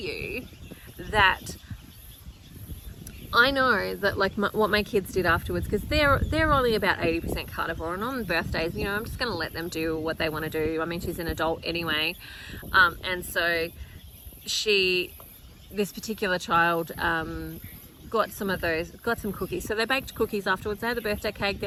that I know that, like, what my kids did afterwards, because they're only about 80% carnivore, and on birthdays, you know, I'm just going to let them do what they want to do. I mean, she's an adult anyway, and so this particular child got some cookies. So they baked cookies afterwards. They had the birthday cake,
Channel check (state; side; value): identical; both; correlation 1.00